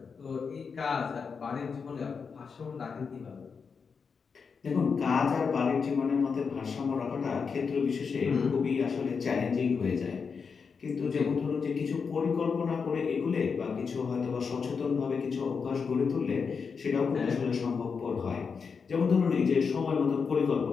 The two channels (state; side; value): quieter; right; 5.6 dB